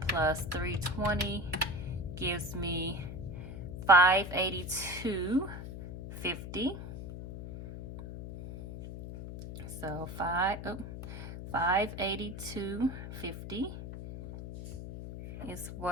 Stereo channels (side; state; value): left; noise; hum, 9 dB below the sound